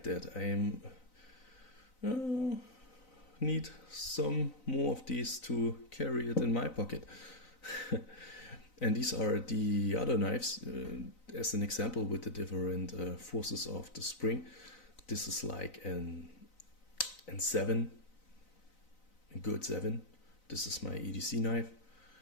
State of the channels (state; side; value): late; right; 4.0 ms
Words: that. I need some more of these to carry it in my pocket. And these are the other knives, as an example, with the different forces of the spring. This is like an 7, a good 7. This is my EDC knife.